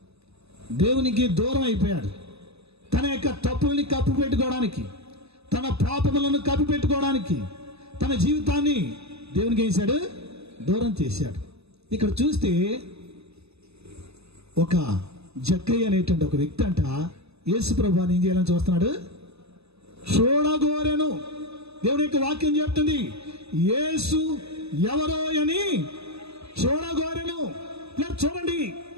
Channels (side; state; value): left; late; 0.79 ms